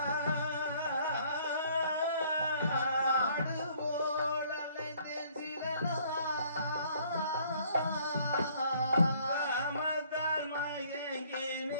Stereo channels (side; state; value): both; inverted; correlation -0.60